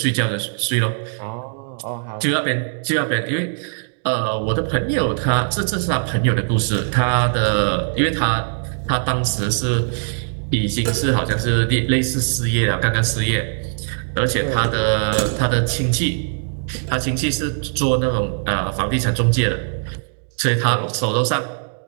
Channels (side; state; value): left; silent; digital silence